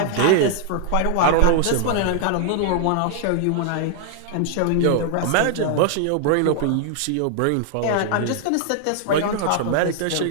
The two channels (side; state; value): both; different; correlation -0.01